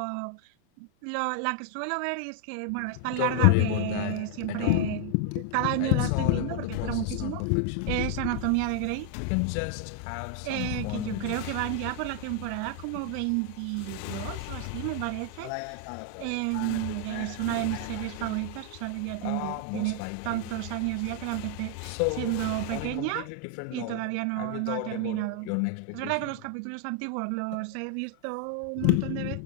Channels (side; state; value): both; different; correlation 0.00